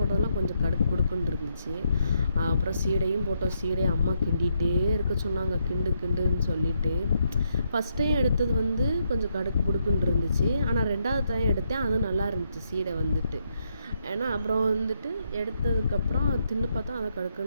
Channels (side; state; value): both; inverted; correlation -0.78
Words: கொஞ்சம் கடுக்கு குடுக்குன்னு இருந்துச்சு. அப்புறம் சீடையும் போட்டோம். சீடையை அம்மா கிண்டிகிட்டே இருக்க சொன்னாங்க, கிண்டுன்னு சொல்லிட்டு. ஃபஸ்ட் டைம் எடுத்தது வந்து கொஞ்சம் கடுக்கு புடுக்குன்னு இருந்துச்சு. ஆனால் 2வது டைம் எடுத்தேன், அது நல்லா இருந்துச்சு சீடை வந்துட்டு. ஏன்னா அப்புறம் வந்துட்டு எடுத்ததுக்கப்புறம் தின்னு பார்த்தா அதை